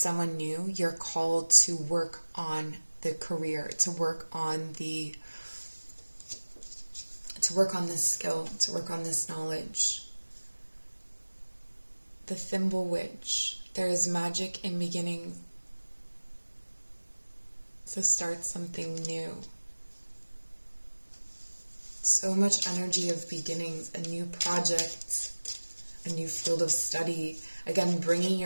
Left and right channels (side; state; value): both; inverted; correlation -1.00